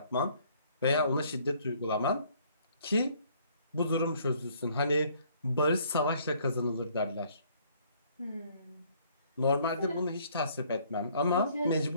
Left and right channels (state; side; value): inverted; both; correlation -0.62